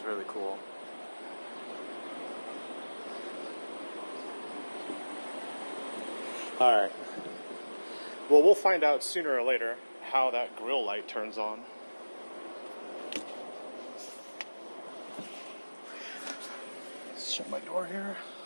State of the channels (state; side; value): inverted; both; correlation -1.00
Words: really cool. Alright. Well, we'll find out sooner or later how that grille light turns on. Let's shut my door here.